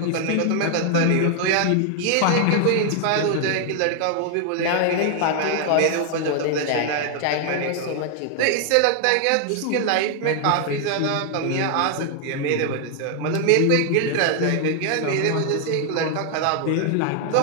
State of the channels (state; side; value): different; both; correlation 0.00